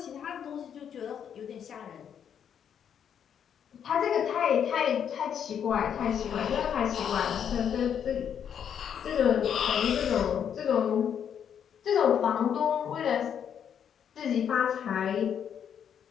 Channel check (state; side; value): quieter; right; 8.4 dB